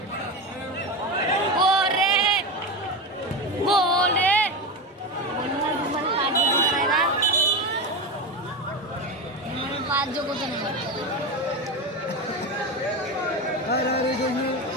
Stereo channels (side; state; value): both; normal; correlation 0.19